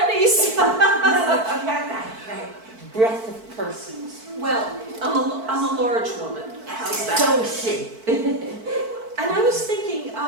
No, but she had that breadth of person. Well, I'm a large woman. How's that? So is she. And I was thinking,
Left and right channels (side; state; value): left; late; 4.5 ms